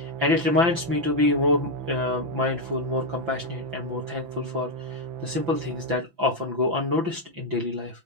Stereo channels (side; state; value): left; late; 5.9 ms